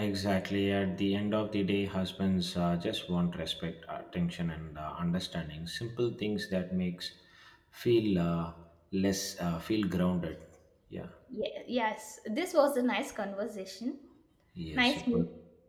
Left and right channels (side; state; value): both; identical; correlation 1.00